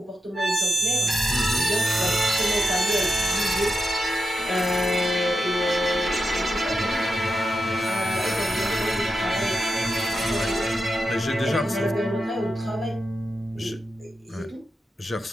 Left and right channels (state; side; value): normal; both; correlation 0.89